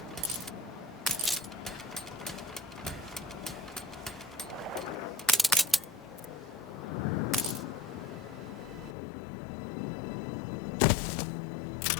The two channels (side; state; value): right; drops out; at 9.0 s